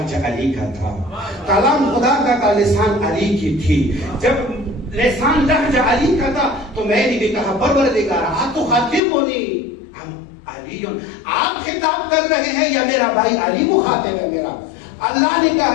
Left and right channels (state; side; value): drops out; right; at 9.0 s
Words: علی کا تھا. کلام خدا کا تھا، لسان علی کی تھی. جب لسان لہجہ علی کا تھا تو میں نے بھی کہا پروردگار اتخاطبنی ہم علی، آپ خطاب کر رہے ہیں یا میرا بھائی علی مخاطب ہے میرا؟ اللہ نے